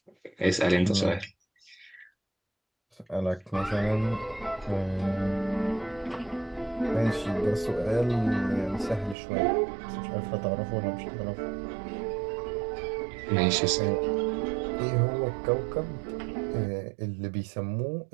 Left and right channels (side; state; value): left; drops out; at 9.2 s